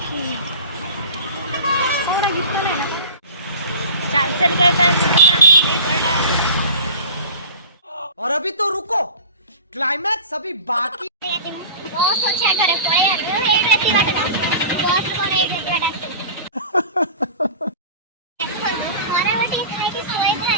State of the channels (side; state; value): both; inverted; correlation -0.38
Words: चल चल और अभी तो रुको, क्लाइमैक्स अभी बाकी।